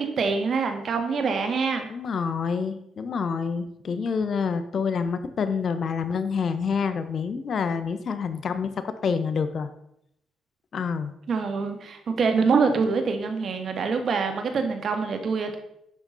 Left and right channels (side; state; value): both; normal; correlation 0.76